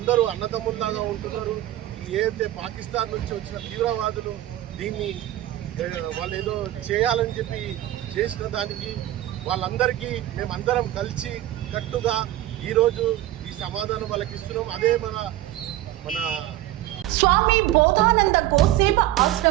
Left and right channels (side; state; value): left; quieter; 14.5 dB